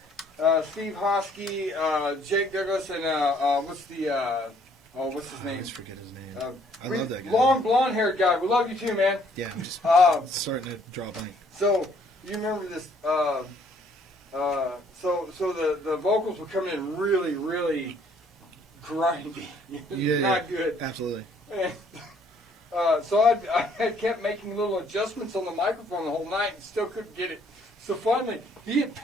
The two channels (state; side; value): normal; both; correlation 0.63